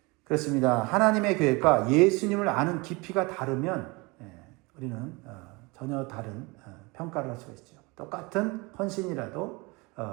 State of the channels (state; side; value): quieter; left; 26.1 dB